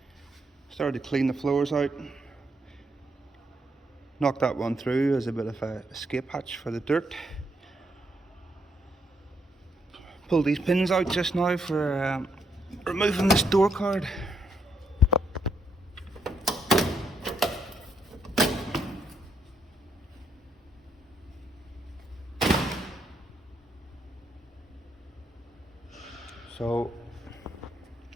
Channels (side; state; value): both; normal; correlation 0.75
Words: Started to clean the floors out. Knocked that one through as a bit of a escape hatch for the dirt. Pulled these pins out just now for removing this door card. So